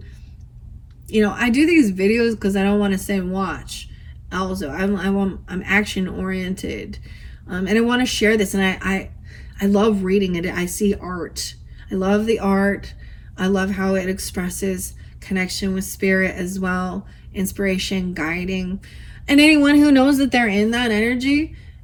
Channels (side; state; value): both; identical; correlation 1.00